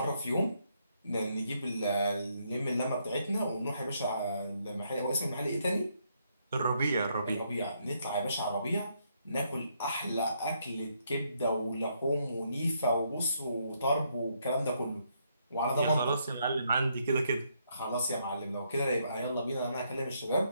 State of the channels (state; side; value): inverted; both; correlation -0.74